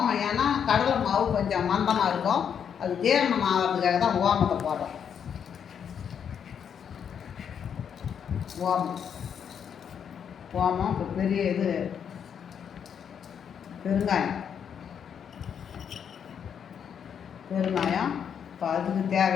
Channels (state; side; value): quieter; right; 7.9 dB